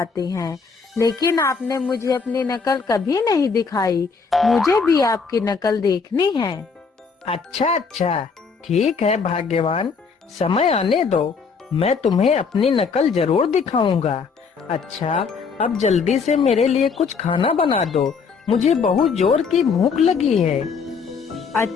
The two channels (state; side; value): quieter; right; 5.3 dB